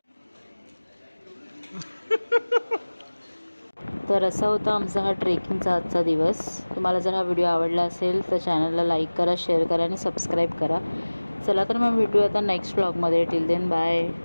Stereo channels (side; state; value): both; inverted; correlation -1.00